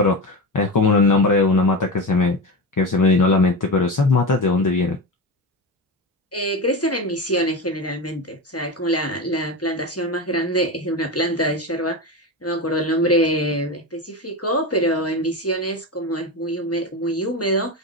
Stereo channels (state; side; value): normal; both; correlation 0.21